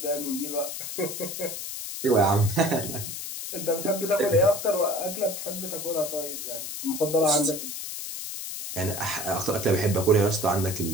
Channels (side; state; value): left; noise; hiss, 7 dB below the sound